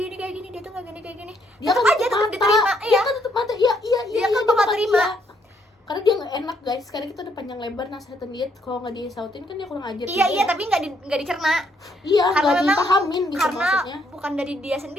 gini, dia tuh kayak gini. Dia tetap kan aja tetap diterima. Dia kan tetap mata. Iya dia kan bakal terima. Iya. Karena dia nggak enak, guys. Sekarang kita udah panjang lebar nasihatin dia, kalau nggak disautin kan dia kurang ajar. Iya tapi nggak dicerna. Iya, karena nggak memang dipahamin gitu karena maksudnya. bukan dari dia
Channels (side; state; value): both; normal; correlation 0.72